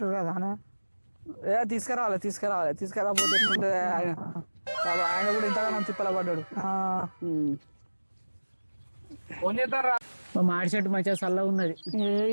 కదా. తీసుకురాపోతే ఆయన కూడా ఇంతగానో తిప్పల పడ్డాడు. ఫోన్ చేస్తారా? మాడి చెట్టు మంచిగా చల్లగా ఉన్నది.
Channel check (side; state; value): both; inverted; correlation -1.00